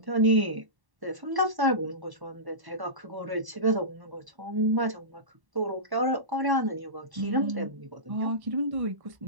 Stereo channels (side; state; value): left; late; 1.1 ms